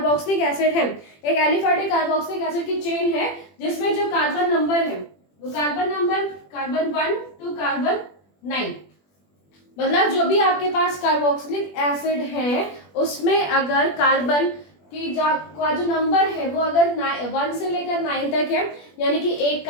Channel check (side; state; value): right; late; 21 ms